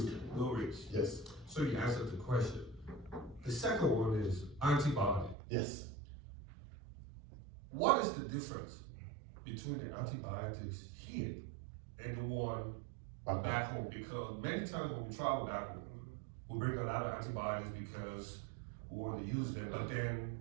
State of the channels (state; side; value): drops out; left; at 5.4 s